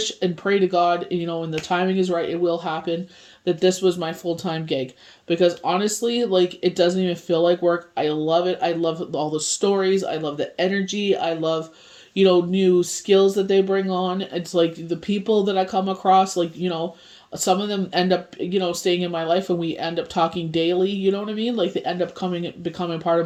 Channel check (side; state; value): both; identical; correlation 1.00